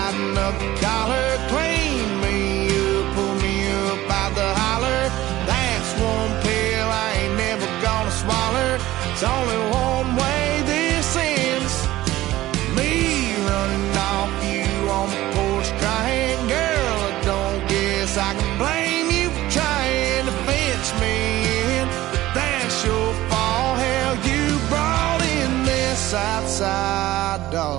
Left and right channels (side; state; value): left; quieter; 16.2 dB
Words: up the collar, clean me up, pull me up out the holler. That's one pill I ain't never gonna swallow. It's only one way this ends. Me running off you on the porch crying. Girl, I don't guess I can blame you for trying to fence me in. But that's your fault, hell, you brought in this outside